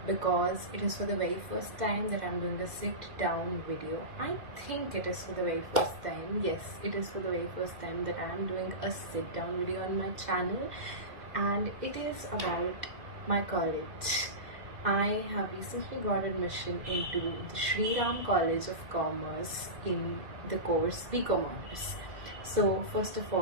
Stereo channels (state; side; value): late; left; 2.0 ms